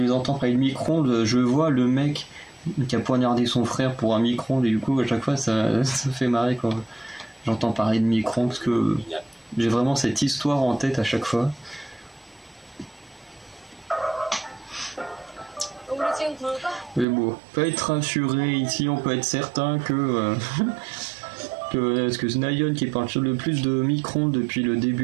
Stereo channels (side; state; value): left; drops out; at 17.1 s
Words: les entends parler de micro-ondes, je vois le mec qui a poignardé son frère pour un micro-ondes et du coup à chaque fois ça fait marrer quand j'entends parler de micro-ondes parce que j'ai vraiment cette histoire en tête à chaque fois. 우리 지금 굴까? Mais bon, on peut être rassuré ici, on peut être certain que parce que Snayon qui parle le plus de micro-ondes depuis le